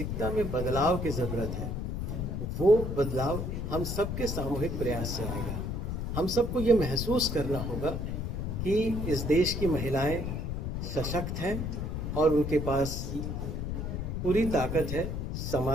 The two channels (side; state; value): left; noise; rumble, 3 dB below the sound